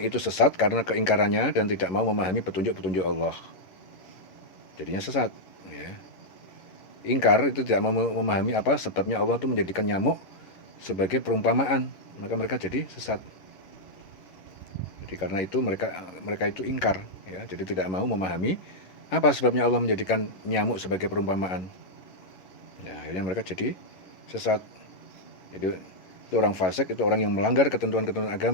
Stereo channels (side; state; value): right; late; 11 ms